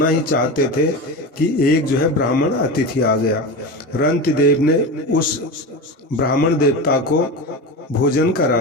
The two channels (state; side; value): normal; both; correlation 0.24